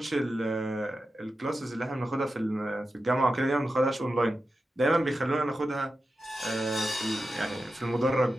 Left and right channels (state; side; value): normal; both; correlation 0.91